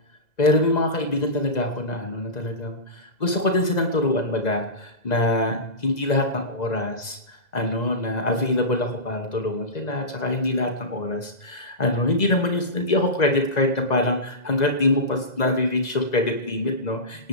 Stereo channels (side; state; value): right; late; 2.0 ms